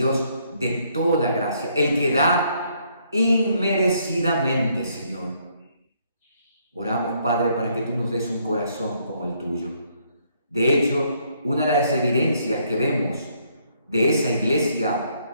de toda gracia, el que da inmerecidamente, Señor. Oramos, Padre, para que tú nos des un corazón como el tuyo. De hecho, una de las evidencias que vemos de esa iglesia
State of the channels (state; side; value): inverted; both; correlation -0.70